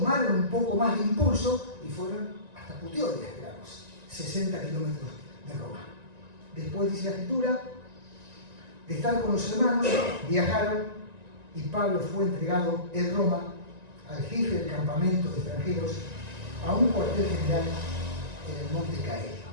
un poco más de impulso y fueron hasta Puteoli a esperarlos, 60 kilómetros de Roma. Después dice la Escritura, de estar con los hermanos, viajaron y Pablo fue entregado en Roma al jefe del campamento de extranjeros a un cuartel general en el monte Caelio.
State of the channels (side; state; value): left; late; 1.9 ms